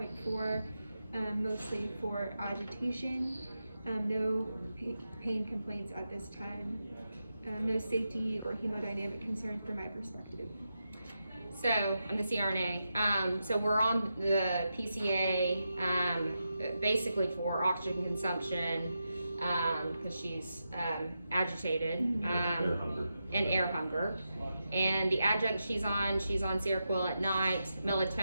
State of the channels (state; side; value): inverted; both; correlation -0.88